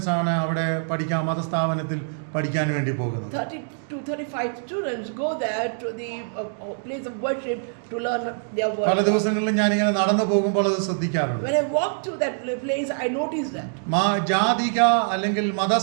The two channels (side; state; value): left; silent; digital silence